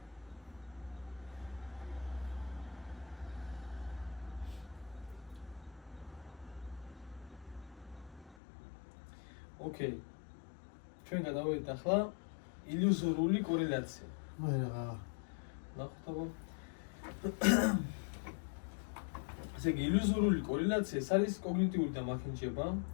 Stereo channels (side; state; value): right; drops out; at 8.3 s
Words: ოკეი. ჩვენ გადავიდეთ ახლა ილუზორული კორელაცია. მე რა. ნახოთ აბა. ესე იგი ილუზორული კორელაცია ეს არის კოგნიტიური დამახინჯება,